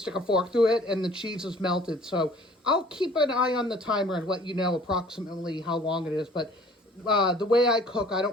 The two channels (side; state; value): both; normal; correlation 0.52